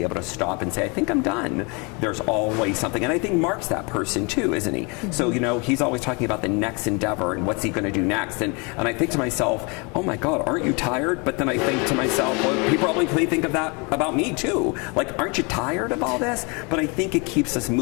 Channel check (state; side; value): quieter; right; 30.9 dB